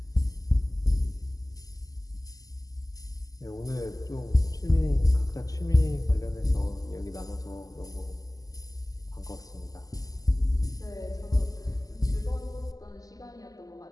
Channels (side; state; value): right; late; 0.17 ms